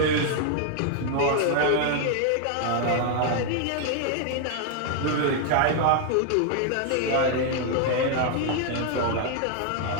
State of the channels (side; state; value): both; different; correlation 0.00